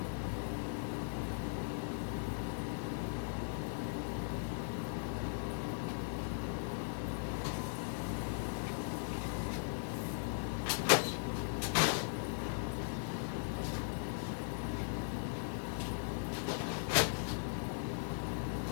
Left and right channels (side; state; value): right; silent; digital silence